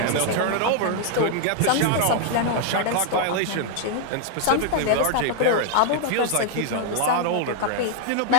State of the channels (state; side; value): different; both; correlation 0.00